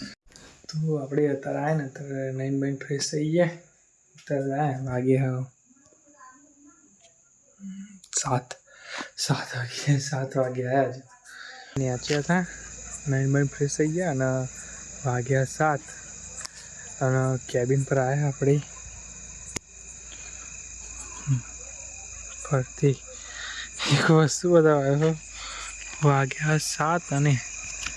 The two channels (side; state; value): both; identical; correlation 1.00